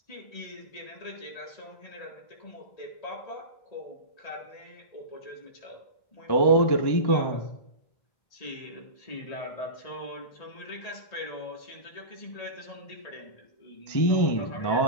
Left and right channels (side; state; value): right; late; 1.1 ms